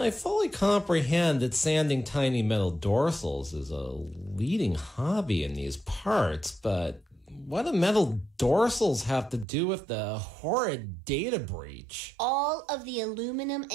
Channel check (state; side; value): drops out; left; at 9.5 s